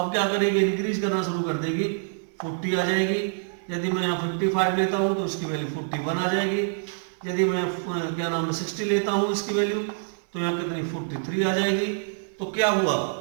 क्या करेगी, इंक्रीज करना शुरू कर देगी, 40 आ जाएगी। यदि मैं यहाँ 55 लेता हूँ तो इसकी वैल्यू 41 आ जाएगी। यदि मैं क्या नाम है 60 लेता हूँ इसकी वैल्यू, तो यहाँ कितनी 43 आ जाएगी। तो क्या हुआ,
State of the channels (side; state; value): left; silent; 61 dB below the other